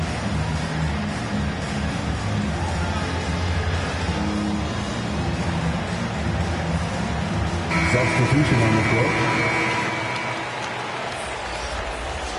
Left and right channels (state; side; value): identical; both; correlation 1.00